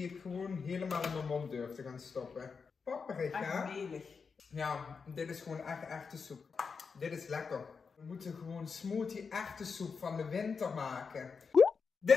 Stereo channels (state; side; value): quieter; right; 5.4 dB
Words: ik gewoon helemaal in mijn mond durf te gaan stoppen. Papperig, hè? Echt melig. Ja, dit is gewoon echt echte soep. Dit is lekker. We moeten gewoon smoothie echte soep van de winter maken.